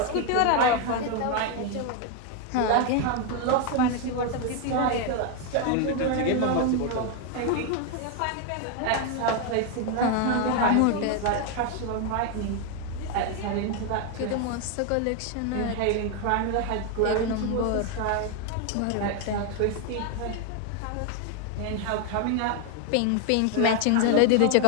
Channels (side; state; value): both; different; correlation 0.01